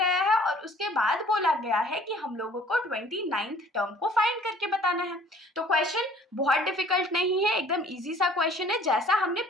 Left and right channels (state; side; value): normal; both; correlation 0.54